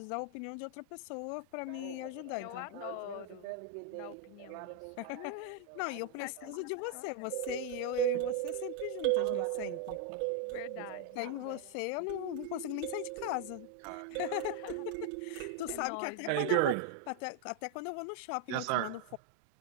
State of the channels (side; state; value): both; different; correlation 0.00